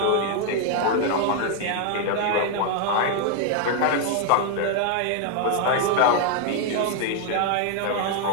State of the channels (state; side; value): different; both; correlation 0.00